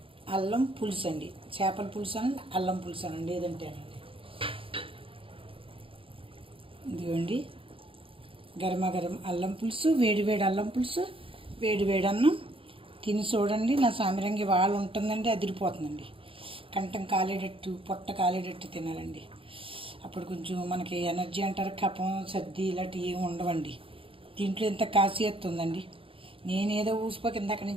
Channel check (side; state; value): left; late; 0.26 ms